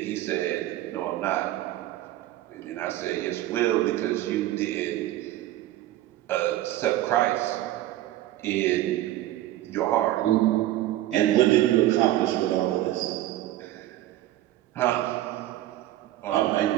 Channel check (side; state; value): left; quieter; 14.5 dB